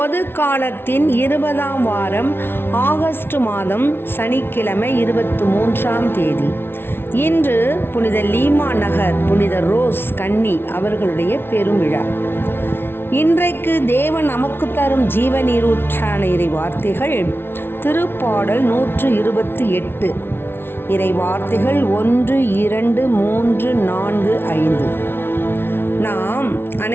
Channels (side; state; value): right; late; 0.11 ms